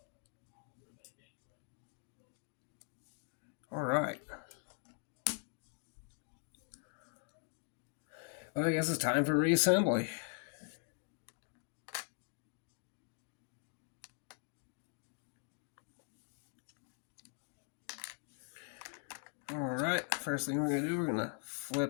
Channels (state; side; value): silent; right; 50 dB below the other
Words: Alright. Well, I guess it's time for reassembly. Alright, first thing we're going to do, we're going to